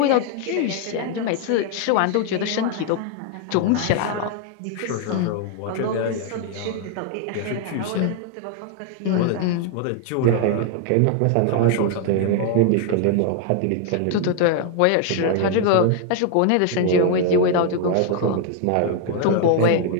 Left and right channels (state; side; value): different; both; correlation 0.00